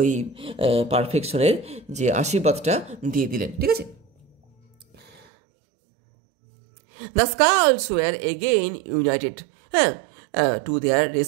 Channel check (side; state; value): left; drops out; at 5.2 s